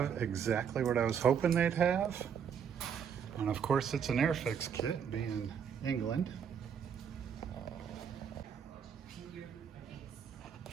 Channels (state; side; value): quieter; left; 7.6 dB